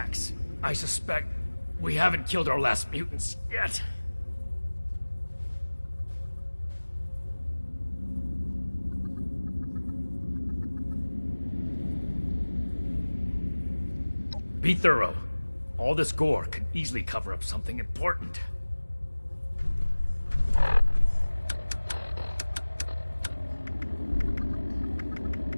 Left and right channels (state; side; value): inverted; both; correlation -1.00